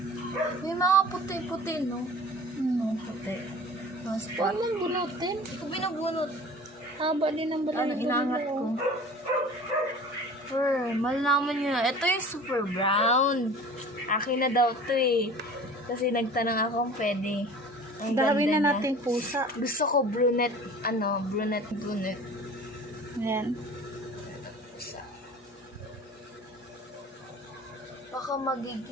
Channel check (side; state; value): both; normal; correlation 0.42